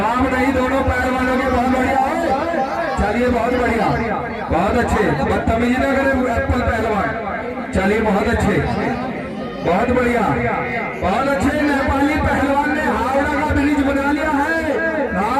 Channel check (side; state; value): both; identical; correlation 1.00